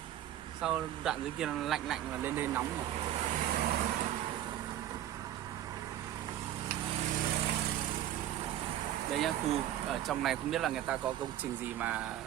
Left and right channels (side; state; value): left; quieter; 12.1 dB